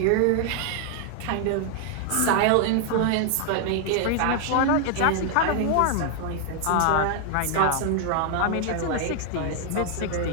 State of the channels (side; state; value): both; different; correlation 0.00